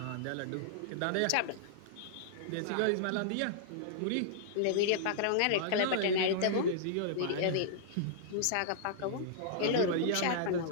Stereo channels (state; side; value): different; both; correlation -0.02